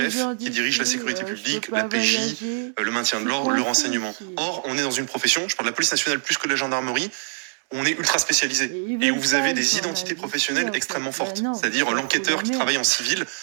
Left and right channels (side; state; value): left; silent; digital silence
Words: qui dirige la sécurité publique, la PJ, le maintien de l'ordre, le renseignement. Or, on est dans une profession, je parle de la police nationale plus que de la gendarmerie, où on est ultra spécialisé et où vous avez des identités professionnelles extrêmement fortes. C'est-à-dire l'enquêteur qui travaille en civil